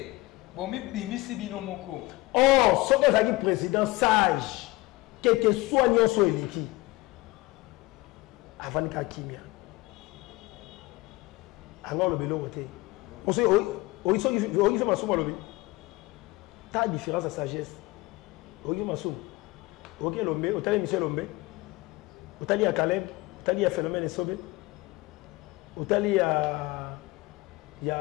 bomi bimisi bino moko. Oh, ce que ça dit président sage quel que soit nyonso eliki avant ka kimia. Alors le belo côté. On sait o fait ma souma lobby. Ta différence à sagesse. O ma souma. OK Lombe, o tali Michel Lombe. Otali à Caleb, Otali à Phénomène et Sobé, Otali à. Il y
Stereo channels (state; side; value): quieter; right; 20.7 dB